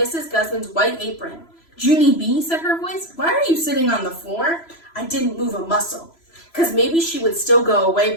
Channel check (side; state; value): right; late; 3.0 ms